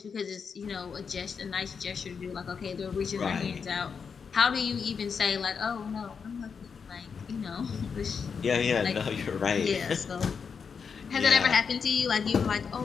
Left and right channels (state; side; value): quieter; right; 6.0 dB